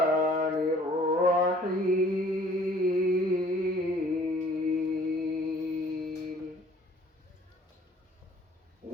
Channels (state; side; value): normal; both; correlation 0.55